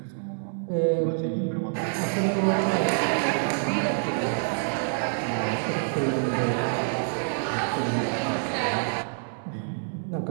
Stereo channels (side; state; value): left; silent; 60 dB below the other